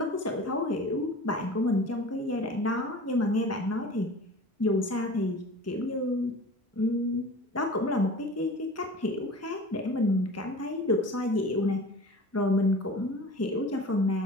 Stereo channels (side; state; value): both; normal; correlation 0.39